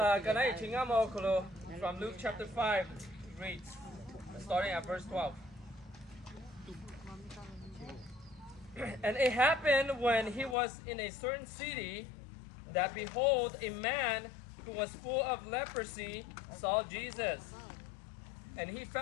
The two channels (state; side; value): drops out; right; at 10.6 s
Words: from Luke chapter 5 reads, starting at verse 12. And it happened when he was in a certain city that behold, a man who was full of leprosy saw Jesus. And he